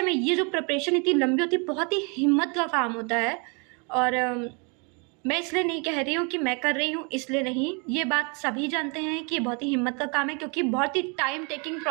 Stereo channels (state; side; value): quieter; left; 33.9 dB